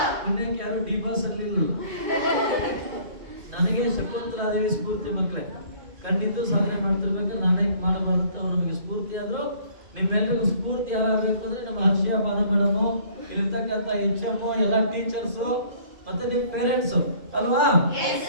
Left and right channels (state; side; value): late; left; 2.2 ms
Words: ಪುಣ್ಯಕ್ಕೆ ಯಾರು ಡಿ ಬಾಸ್ ಅಲ್ಲಿಲ್ಲ. ನನಗೆ ಶಕುಂತಲಾದೇವಿ ಸ್ಫೂರ್ತಿ. ಮಕ್ಕಳೇ, ಖಂಡಿತ ಸಾಧನೆ ಮಾಡ್ತಿರ್ಬೇಕಾದ್ರೆ ನಾನೇ ಮಾಡಬಾರ್ದು. ಅವ್ರು ನಮಗೆ ಸ್ಫೂರ್ತಿ ಆದ್ರು. ನಿಮ್ಮೆಲ್ಲರಿಗೂ ಸ್ಫೂರ್ತಿ ಯಾರಾಗಬೇಕು ಅಂದ್ರೆ ನಮ್ಮ ಹರ್ಷಿಯಾ ಬಾನ ಮೇಡಮು, ಇಲ್ಲಿರ್ತಕ್ಕಂಥ HM, ಎಲ್ಲ ಟೀಚರ್ಸು, ಮತ್ತೆ ನಿಮ್ಮ ಪೇರೆಂಟ್ಸ್ ಅಲ್ವಾ?